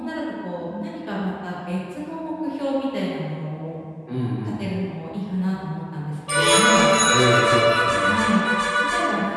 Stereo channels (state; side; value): identical; both; correlation 1.00